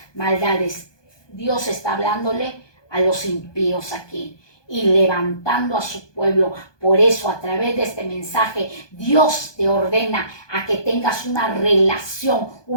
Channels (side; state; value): right; late; 1.2 ms